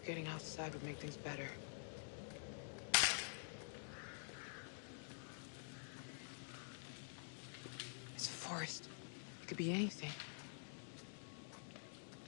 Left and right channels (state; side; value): silent; right; digital silence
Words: getting outside would make things better. It's a forest. It could be anything.